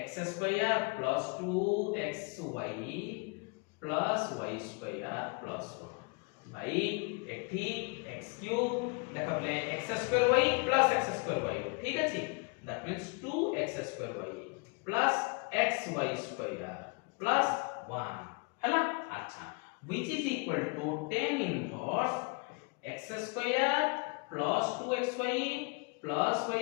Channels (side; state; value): right; quieter; 32.2 dB